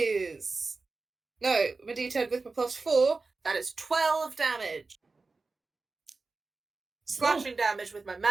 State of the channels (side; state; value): left; quieter; 3.9 dB